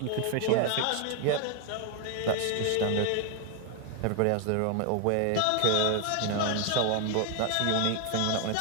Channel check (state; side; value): different; both; correlation 0.01